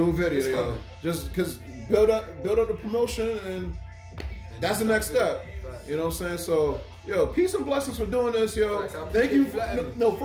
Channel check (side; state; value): both; identical; correlation 1.00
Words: a video, yo. Just because build up the promotion, and that's the next step. You know what I'm saying? So, yo, peace and blessings for doing this, yo. Thank you. No,